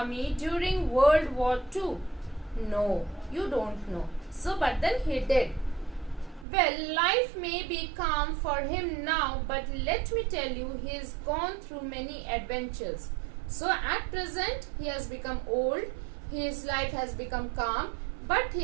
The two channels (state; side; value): drops out; left; at 6.5 s